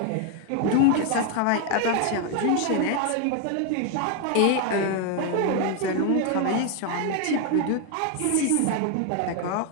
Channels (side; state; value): both; different; correlation 0.01